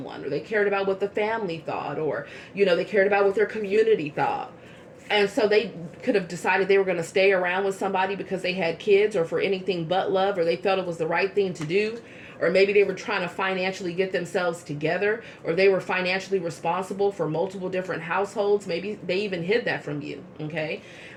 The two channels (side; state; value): both; identical; correlation 1.00